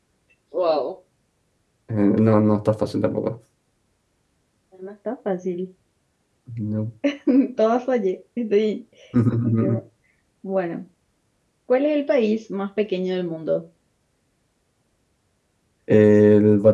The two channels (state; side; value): identical; both; correlation 1.00